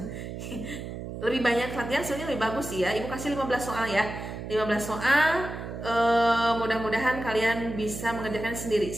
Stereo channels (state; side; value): noise; right; hum, 8 dB below the sound